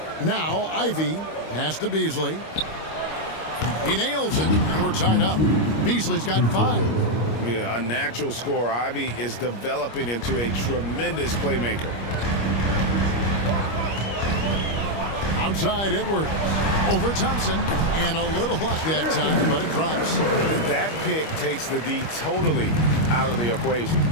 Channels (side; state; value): right; late; 25 ms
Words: Now Ivy pass to Beasley. He nails it, and we're tied up. Beasley's got 5. Yeah, a natural scorer. Ivy is developing into a tremendous playmaker. Outside Edwards. Over Thompson. And a little luck that time, but it drops. That pick takes the D totally out of the equation.